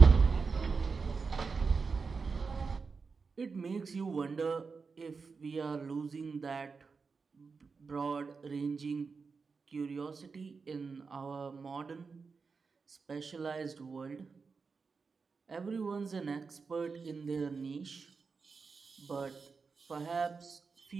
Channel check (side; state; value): left; quieter; 4.9 dB